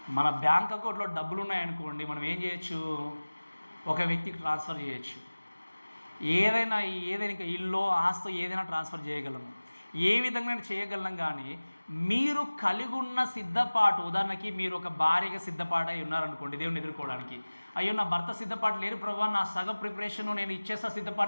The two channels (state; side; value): inverted; both; correlation -1.00